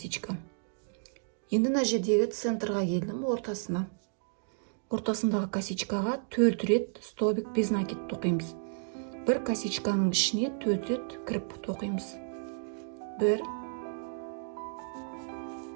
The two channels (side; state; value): left; silent; digital silence